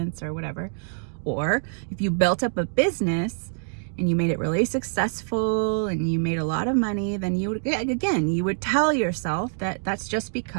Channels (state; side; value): silent; left; digital silence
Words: or whatever. Or if you built up a business and you made it really successful and you made a lot of money, then you would tell yourself that that's just